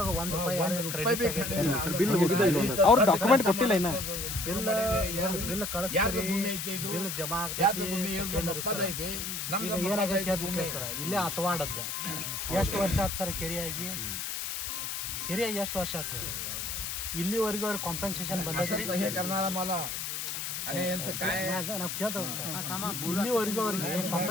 1 ರೂಪಾಯಿ ಅವ್ರು ಡಾಕ್ಯುಮೆಂಟ್ ಕೊಟ್ಟಿಲ್ಲ ಇನ್ನ. ಬಿಲ್ ಯಾರ್ದು ಭೂಮಿ ಐತಿ ಇದು? ಬಿಲ್ ಜಮಾ ಯಾರ್ದು ಭೂಮಿ ಹೇಳ್ರಿ, ನಮ್ಮ ಅಪ್ಪದ ಐತಿ, ನಮ್ದು ಏನಾಗೈತೆ ಸರ್ ಇಲ್ಲೇ ಹತ್ವಾಡದ್ದ. ಎಷ್ಟು ವರ್ಷ ಆಯ್ತು ಸರ್ ಕೆರೆಯಾಗಿ ಎಷ್ಟು ವರ್ಷ ಆಯ್ತು ಹೇಳಿ? ಇಲ್ಲಿವರೆಗೂ ಅವ್ರಿಗೆ ಕಾಂಪನ್ಸೇಷನ್ ಬಂದೈತೆ हे करणारा मला आणि यांचं काय ನಾವು ಕೇಳ್ತೇವೆ. ಇಲ್ಲಿವರೆಗೂ ಅವ್ರಿಗೆ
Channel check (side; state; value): left; noise; hiss, 4 dB below the sound